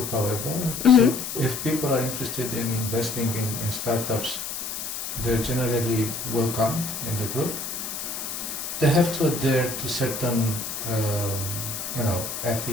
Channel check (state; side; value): noise; left; hiss, 6 dB below the sound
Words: however. Mm-hmm. So if people are interested in investing in startups, they're generally welcomed in the group. They have to adhere to certain